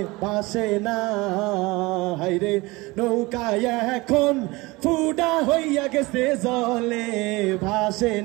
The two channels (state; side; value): quieter; left; 22.8 dB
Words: ভাসে না হাইরে নৌকায় এখন ফুটা হইয়া গেছে জলে ভাসে